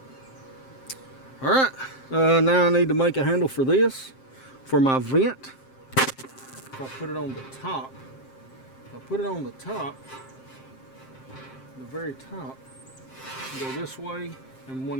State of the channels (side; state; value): right; late; 7.6 ms